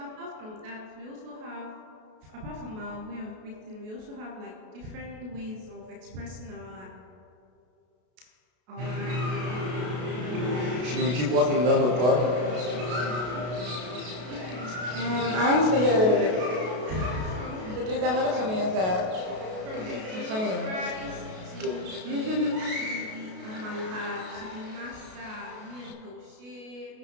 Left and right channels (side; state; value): left; late; 33 ms